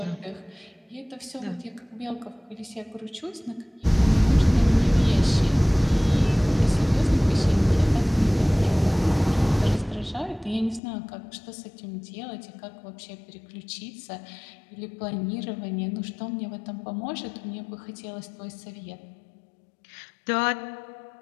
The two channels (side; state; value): right; drops out; at 10.8 s